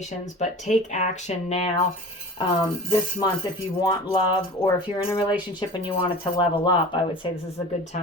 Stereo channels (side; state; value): both; normal; correlation 0.38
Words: but take action now. This month, if you want love, or if you're in a relationship and you want it to level up, I would say this is a good